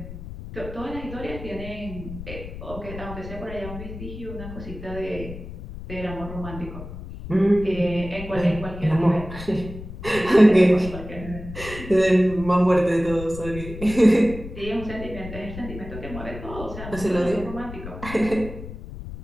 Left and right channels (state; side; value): noise; left; rumble, 11 dB below the sound